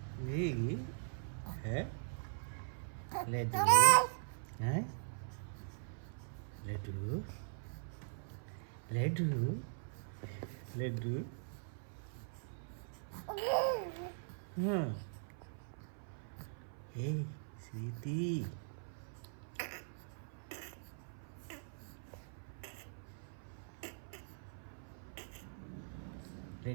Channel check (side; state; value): left; silent; 50 dB below the other